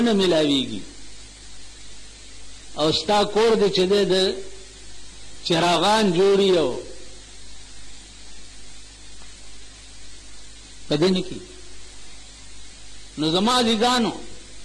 ملاویږي او ستا کور دې چې د چراغان جوړي او پدې کې. نو زما ديګانو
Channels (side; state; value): both; identical; correlation 1.00